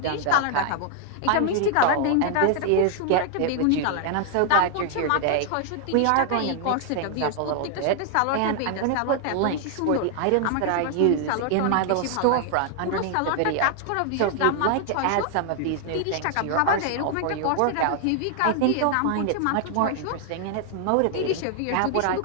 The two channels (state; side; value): different; both; correlation 0.00